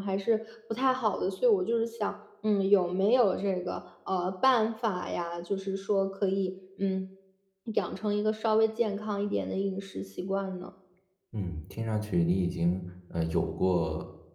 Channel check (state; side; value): identical; both; correlation 1.00